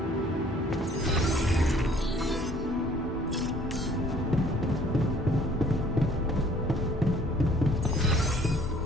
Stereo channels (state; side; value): normal; both; correlation 0.57